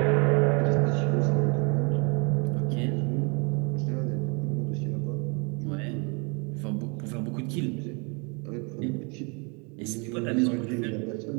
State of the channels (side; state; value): left; quieter; 33.0 dB